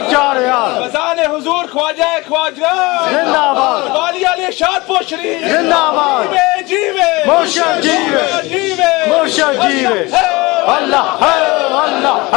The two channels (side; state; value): right; quieter; 23.1 dB